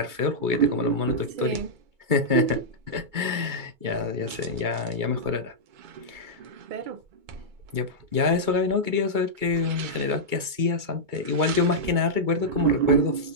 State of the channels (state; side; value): late; left; 2.3 ms